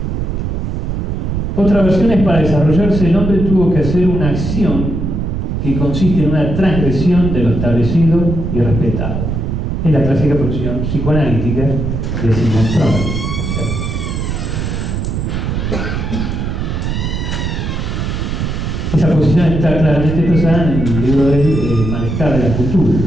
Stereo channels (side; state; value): right; noise; rumble, 2 dB below the sound